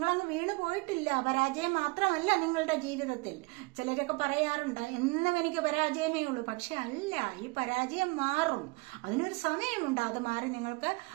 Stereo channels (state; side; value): quieter; left; 26.8 dB